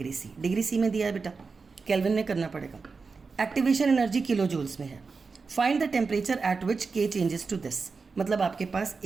C. Degree C में दिया है बेटा, Kelvin में करना पड़ेगा. Activation energy kilojoules में है. Find the temperature at which K changes to this. मतलब आपके पास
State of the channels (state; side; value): quieter; left; 4.6 dB